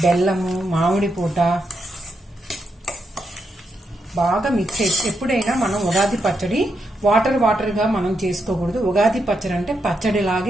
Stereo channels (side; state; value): both; normal; correlation 0.82